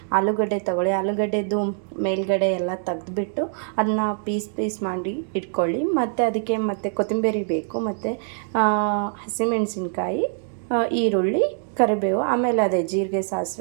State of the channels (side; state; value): left; silent; digital silence